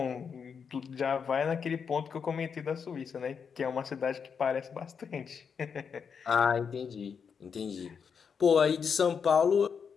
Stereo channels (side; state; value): right; quieter; 6.4 dB